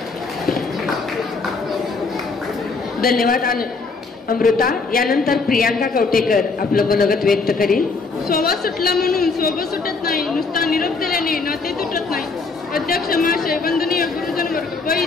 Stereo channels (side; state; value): right; quieter; 4.2 dB